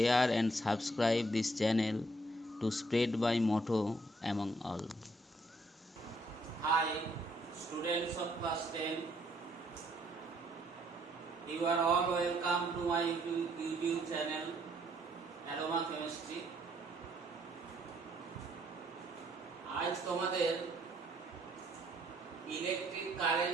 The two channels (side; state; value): both; normal; correlation 0.68